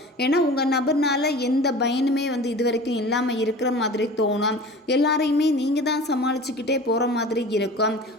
ஏன்னா உங்கள் நபர்னால எந்த பயனுமே வந்து இது வரைக்கும் இல்லாமல் இருக்கிற மாதிரி தோணும். எல்லாரையுமே நீங்கள் தான் சமாளிச்சுக்கிட்டே போகிற மாதிரி இருக்கும்.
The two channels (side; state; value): both; normal; correlation 0.39